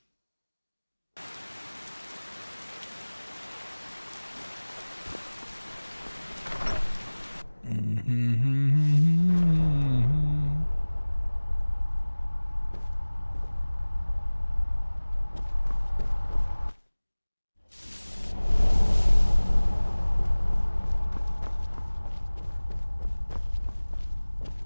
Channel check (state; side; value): inverted; both; correlation -1.00